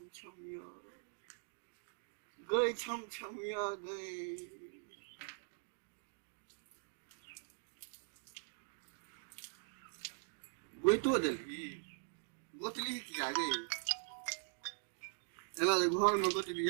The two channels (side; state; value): left; silent; digital silence